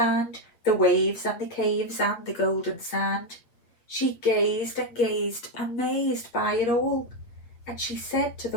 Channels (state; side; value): late; right; 8.8 ms